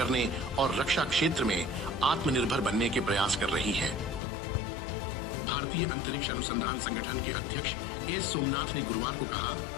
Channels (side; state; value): right; drops out; at 4.2 s